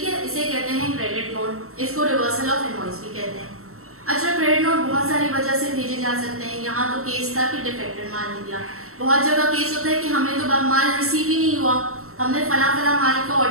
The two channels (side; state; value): left; late; 0.63 ms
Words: है, इसे कहते हैं क्रेडिट नोट, इसको रिवर्सल ऑफ इनवॉइस भी कहते हैं। अच्छा, क्रेडिट नोट बहुत सारी वजह से भेजे जा सकते हैं। यहाँ तो केस था कि डिफेक्टेड माल निकला, बहुत जगह केस होता है कि हमें तो माल रिसीव ही नहीं हुआ, हमने फला फला माल का